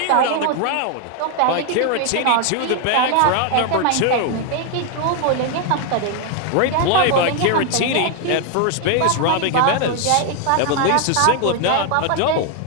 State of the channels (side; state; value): both; different; correlation 0.01